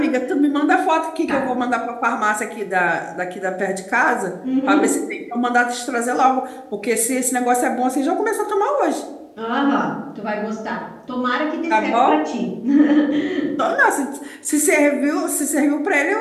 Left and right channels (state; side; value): identical; both; correlation 1.00